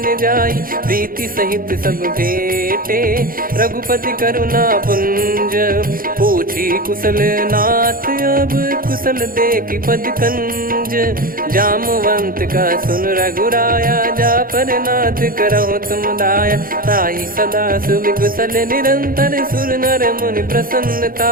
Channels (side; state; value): left; late; 0.41 ms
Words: जाई, प्रीति सहित सब भेटे, रघुपति करुणा पुंज, पूछी कुशल नाथ अब कुशल देखि पद कंज, जामवंत का सुन रघुराया, जा पर नाथ करहु तुम दाया, ताहि सदा सुभि कुशल निरंतर, सुर नर मुनि प्रसन्नता